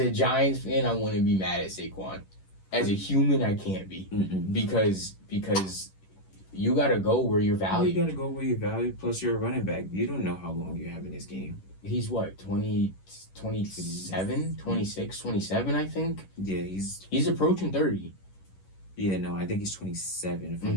Giants fan, I want to be mad at Saquon. As a human, I can't be. Because you got to go where you're valued. You got to go where you're valued, plus you're a running back. You don't know how long you have in this game. He's what, 27, 26, 27, I think? Yeah, he's approaching 30. Yeah, no, I think he's 27, if I'm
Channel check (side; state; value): right; late; 11 ms